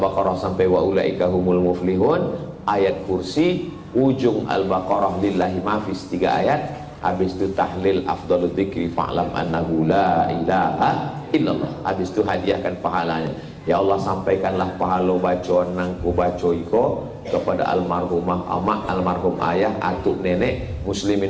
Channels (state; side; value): identical; both; correlation 1.00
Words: sampai wa ulaika humul muflihun, ayat kursi, ujung Al-Baqarah lillahi mafis 3 ayat. Habis itu tahlil afdalul dzikri fa'lam annahu la ilaha illallah. Habis itu hadiahkan pahalanya. Ya Allah, sampaikanlah pahala bacaan nangku baca iko kepada almarhumah amak, almarhum ayah, atuk nenek,